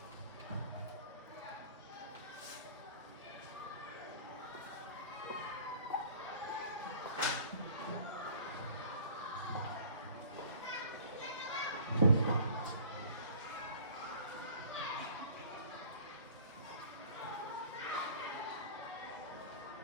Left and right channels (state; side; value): inverted; both; correlation -0.47